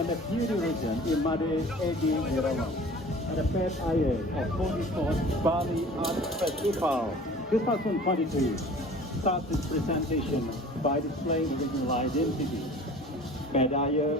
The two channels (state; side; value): normal; both; correlation 0.45